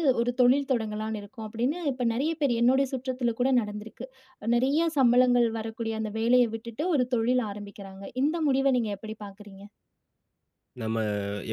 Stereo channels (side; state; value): both; identical; correlation 1.00